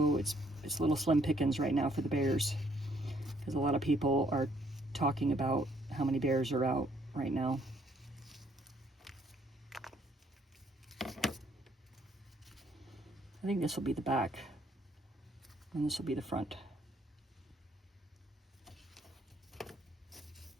it's little slim pickings right now for the bears, because a lot of people are talking about how many bears are out right now. I think this will be the back, and this will be the front.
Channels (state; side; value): normal; both; correlation 0.67